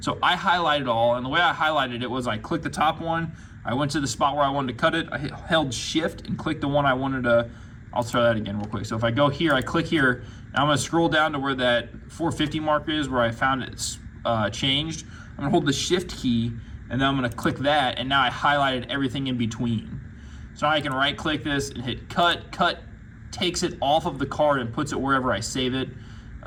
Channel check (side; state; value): both; identical; correlation 1.00